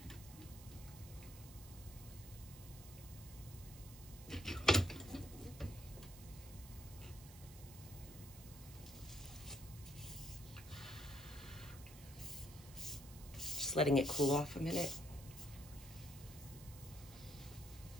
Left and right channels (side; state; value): right; noise; hiss, 16 dB below the sound